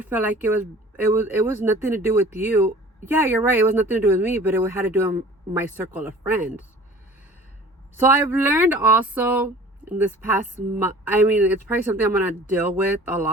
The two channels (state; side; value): normal; both; correlation 0.46